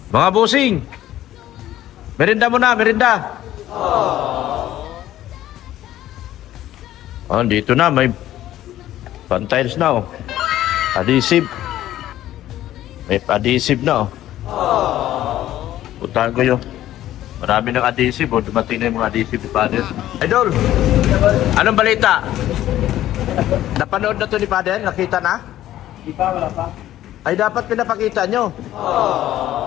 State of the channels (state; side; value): quieter; right; 13.4 dB